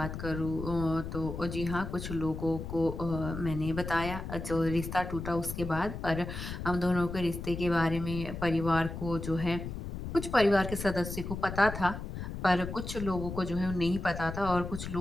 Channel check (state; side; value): noise; left; rumble, 7 dB below the sound